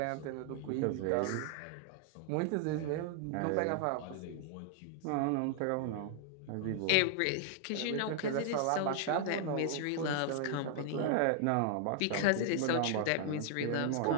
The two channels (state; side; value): different; both; correlation 0.00